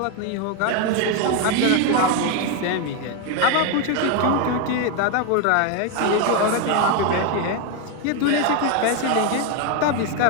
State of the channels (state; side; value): different; both; correlation 0.01